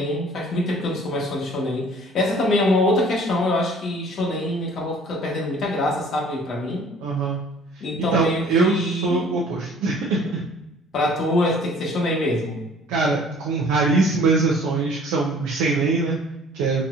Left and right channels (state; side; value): normal; both; correlation 0.52